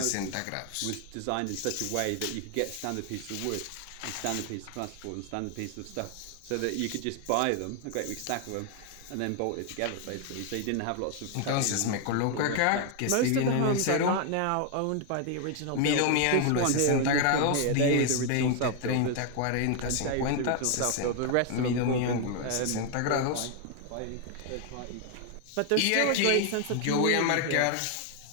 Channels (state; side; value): different; both; correlation 0.00